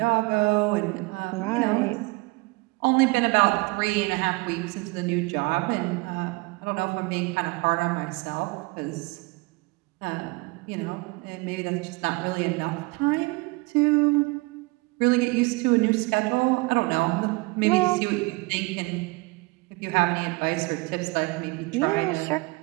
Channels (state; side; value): quieter; left; 25.7 dB